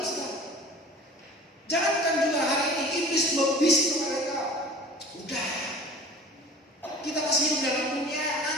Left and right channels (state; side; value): normal; both; correlation 0.43